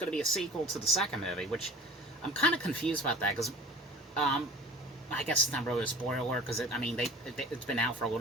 to be a sequel to the second movie, which I'm kind of confused about that because I guess it's not really a spoiler because it's been out for a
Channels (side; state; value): both; normal; correlation 0.42